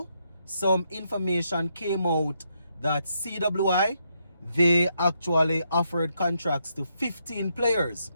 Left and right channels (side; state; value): both; inverted; correlation -0.78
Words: some information came out that CWI, they actually offered contracts to 15 players.